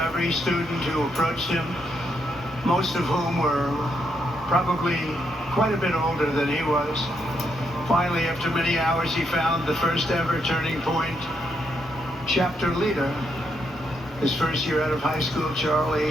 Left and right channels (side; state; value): both; normal; correlation 0.78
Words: every student who approached him, most of whom were probably quite a bit older than he was. Finally, after many hours, he found the first ever turning point. Chapter leader. His first year out of high school,